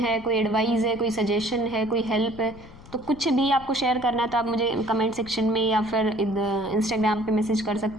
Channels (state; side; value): noise; left; rumble, 20 dB below the sound